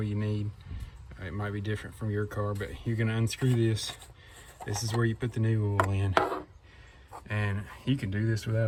you need. It might be different from your car, but you're gonna unscrew this. This is where you put the new oil in. And you can do this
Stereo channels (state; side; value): identical; both; correlation 1.00